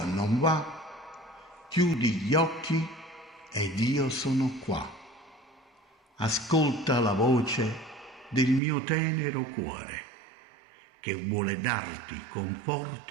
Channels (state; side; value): drops out; left; at 8.6 s